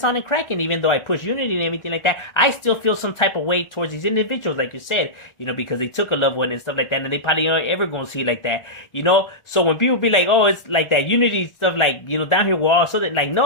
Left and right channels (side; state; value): right; late; 1.4 ms